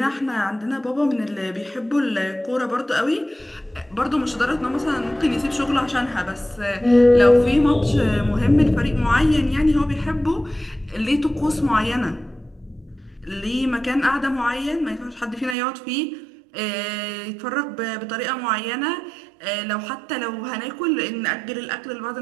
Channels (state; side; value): drops out; left; at 15.6 s